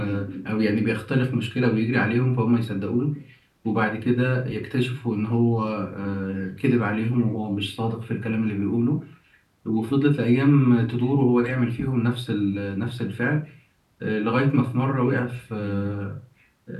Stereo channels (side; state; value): both; identical; correlation 1.00